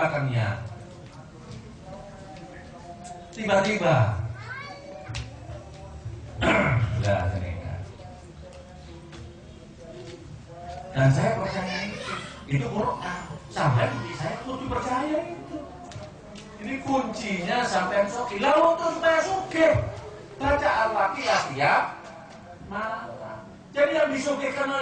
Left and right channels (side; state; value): both; identical; correlation 1.00